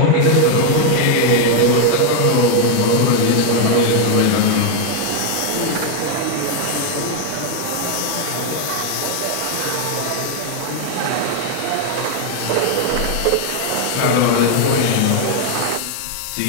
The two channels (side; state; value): both; different; correlation 0.01